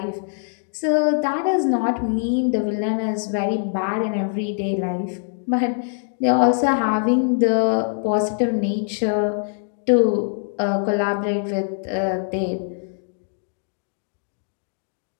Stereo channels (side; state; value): right; silent; digital silence